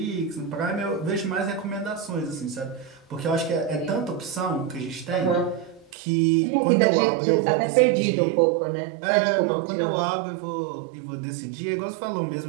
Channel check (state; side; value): drops out; left; at 5.9 s